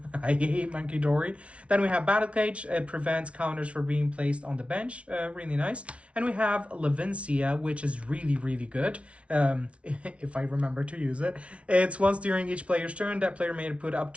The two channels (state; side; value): late; left; 0.062 ms